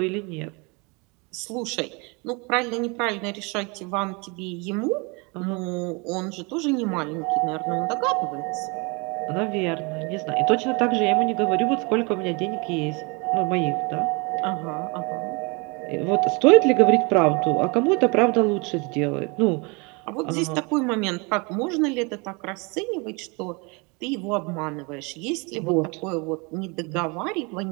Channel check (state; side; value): quieter; left; 29.7 dB